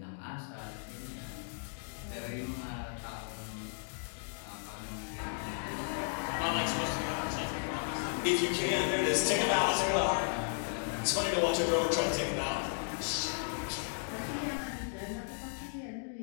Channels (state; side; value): silent; right; digital silence